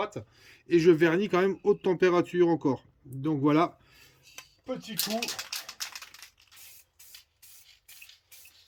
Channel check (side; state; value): both; identical; correlation 1.00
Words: Et je vernis quand même haute température encore. Donc voilà, petit coup.